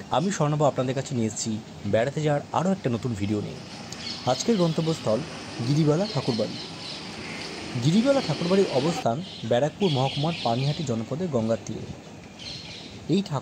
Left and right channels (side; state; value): both; identical; correlation 1.00